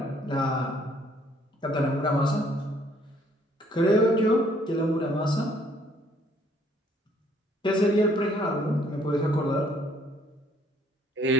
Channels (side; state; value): both; normal; correlation 0.63